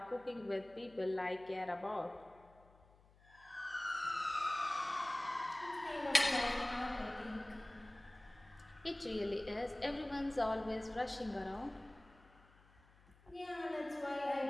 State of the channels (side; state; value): left; noise; hum, 27 dB below the sound